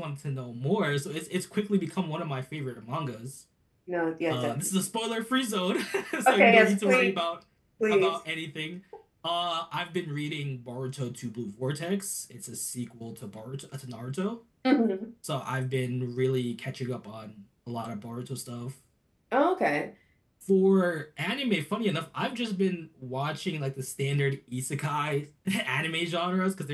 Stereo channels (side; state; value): both; identical; correlation 1.00